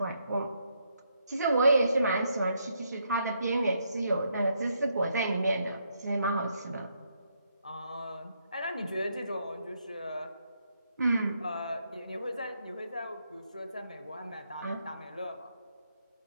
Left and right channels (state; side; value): inverted; both; correlation -0.76